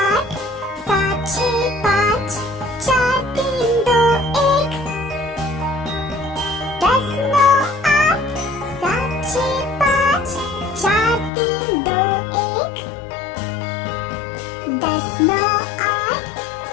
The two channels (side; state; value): right; drops out; at 11.3 s